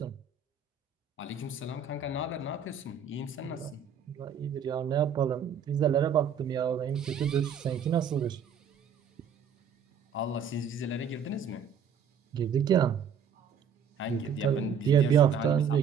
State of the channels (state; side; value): quieter; left; 6.7 dB